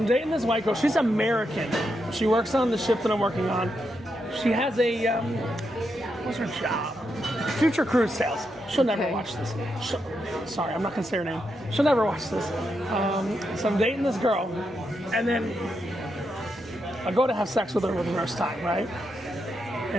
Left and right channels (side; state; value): both; normal; correlation 0.83